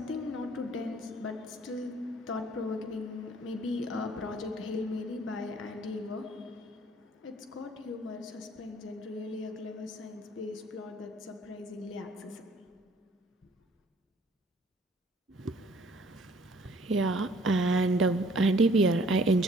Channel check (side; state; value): both; normal; correlation 0.58